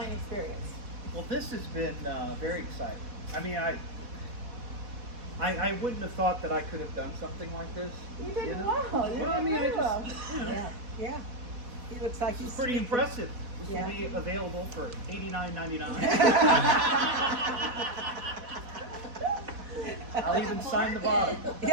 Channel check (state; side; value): late; left; 4.1 ms